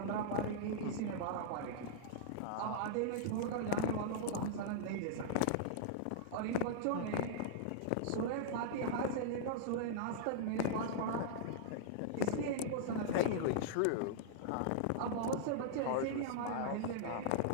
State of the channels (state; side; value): different; both; correlation -0.01